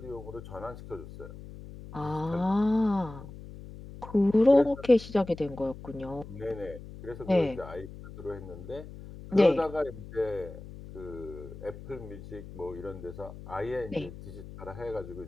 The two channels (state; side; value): noise; left; hum, 14 dB below the sound